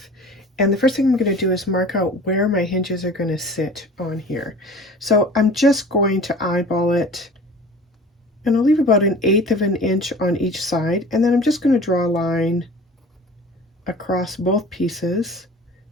And the first thing I'm going to do is mark out where my hinges are going to sit on here. So I'm just going to eyeball it, and I'll leave about 1/8 of an inch on each side, and then I'm just going to draw a line across both pieces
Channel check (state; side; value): normal; both; correlation 0.42